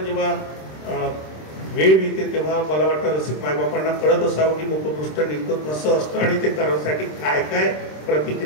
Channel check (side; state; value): right; late; 26 ms